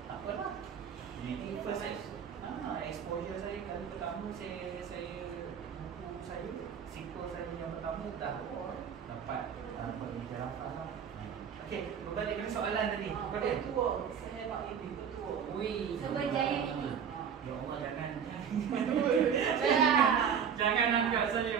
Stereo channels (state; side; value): quieter; left; 7.6 dB